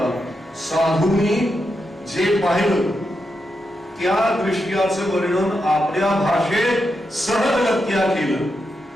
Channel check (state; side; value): normal; both; correlation 0.85